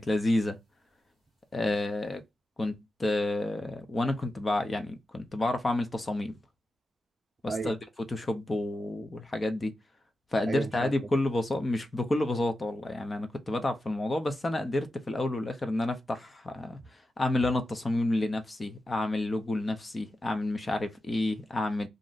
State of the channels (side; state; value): both; normal; correlation 0.91